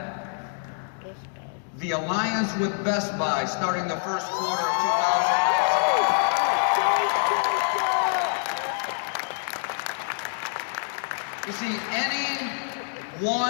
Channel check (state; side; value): silent; right; digital silence